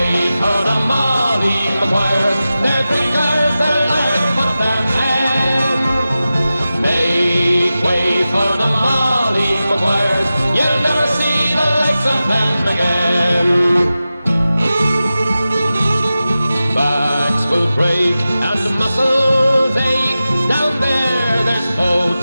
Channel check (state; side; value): inverted; both; correlation -0.94